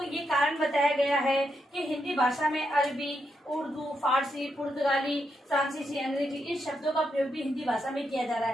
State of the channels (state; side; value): normal; both; correlation 0.82